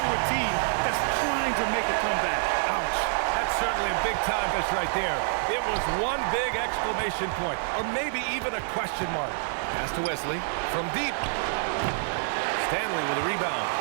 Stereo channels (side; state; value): left; silent; digital silence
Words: a team that's trying to make a comeback. Ouch. That's certainly a big-time finish right there. It was one big exclamation point, or maybe even a question mark. Pass to Wesley from deep. Stanley with a rebound.